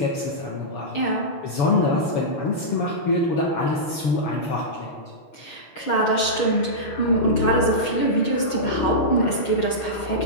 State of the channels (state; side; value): late; right; 6.3 ms